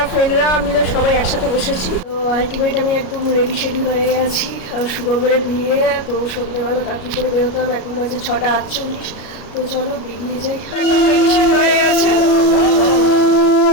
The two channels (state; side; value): late; right; 33 ms